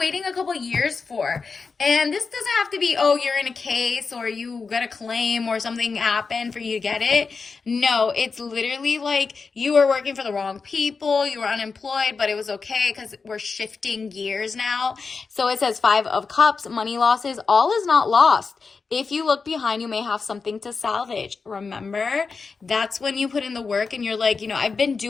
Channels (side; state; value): right; quieter; 4.8 dB